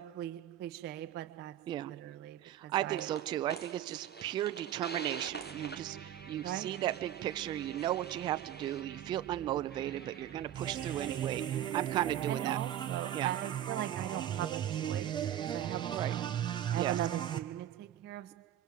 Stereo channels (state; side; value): quieter; left; 11.4 dB